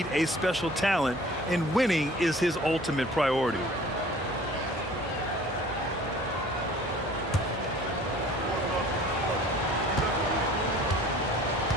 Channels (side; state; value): both; normal; correlation 0.49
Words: a special talent, and winning is his ultimate priority.